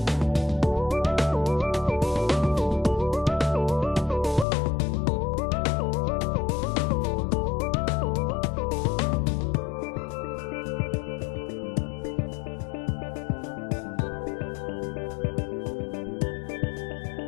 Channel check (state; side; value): drops out; right; at 4.5 s